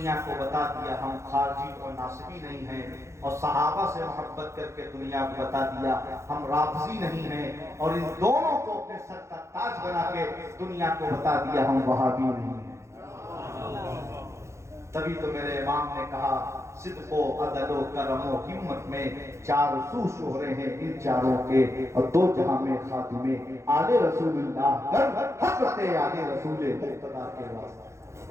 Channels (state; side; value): late; left; 0.14 ms